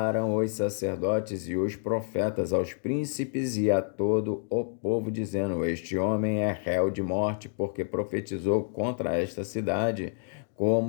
os sacerdotes e os profetas aos príncipes e a todo o povo, dizendo: Este homem é réu de morte, porque profetizou contra esta cidade,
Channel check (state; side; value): silent; right; digital silence